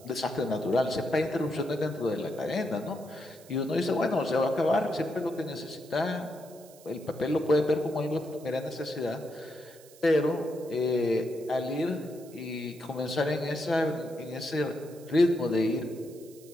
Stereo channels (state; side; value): noise; right; hiss, 23 dB below the sound